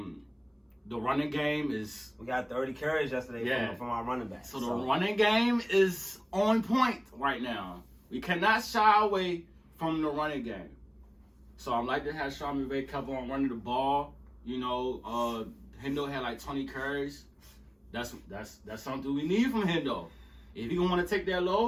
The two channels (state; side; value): identical; both; correlation 1.00